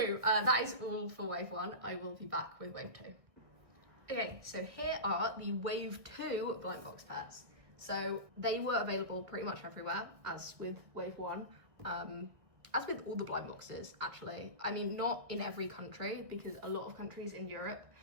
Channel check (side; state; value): left; late; 1.8 ms